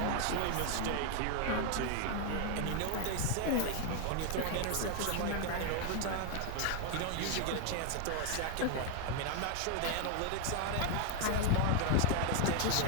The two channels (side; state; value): both; different; correlation 0.00